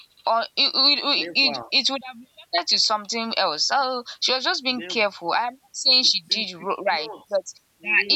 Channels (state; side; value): identical; both; correlation 1.00